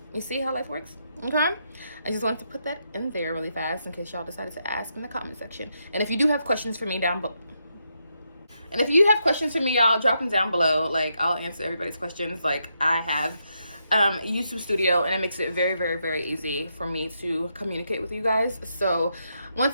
you see how life works? Okay, I just wanted to put that in there really fast in case y'all decided to ask in the comment section. And if you do have questions for me down below, y'all drop them down below. Like, I'll answer everybody's questions. Like, I have YouTube Studio, and it makes it very, very, very easy for me to communicate with you guys. So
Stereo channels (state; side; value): inverted; both; correlation -0.81